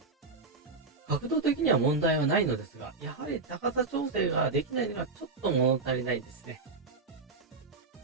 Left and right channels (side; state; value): left; quieter; 4.0 dB